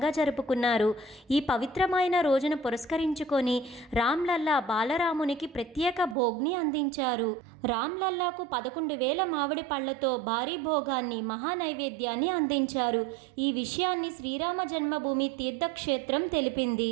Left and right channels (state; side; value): drops out; left; at 6.2 s